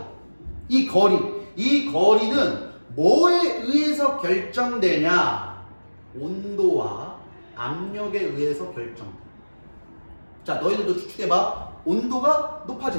이 거리는 뭐에 의해서 결정되냐? 온도와 압력에 의해서 결정돼. 자, 너희들도 추측해봐. 온도가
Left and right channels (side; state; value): both; inverted; correlation -1.00